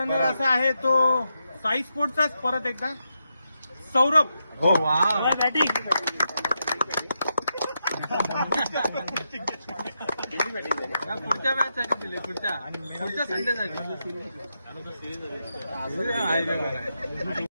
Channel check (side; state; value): both; inverted; correlation -0.85